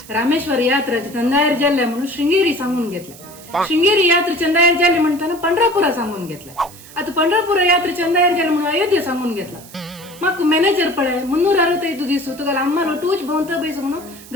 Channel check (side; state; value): right; noise; hiss, 19 dB below the sound